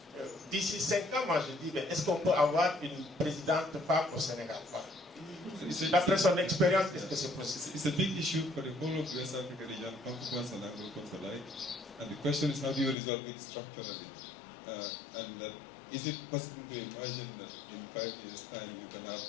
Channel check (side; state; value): right; drops out; at 13.0 s